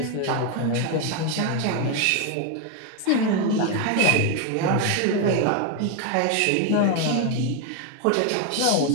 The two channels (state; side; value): different; both; correlation 0.01